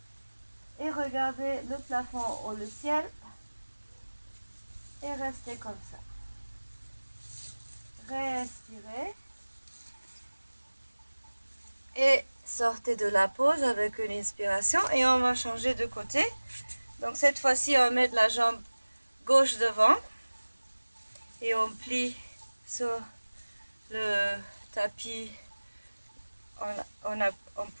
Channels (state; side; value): inverted; both; correlation -1.00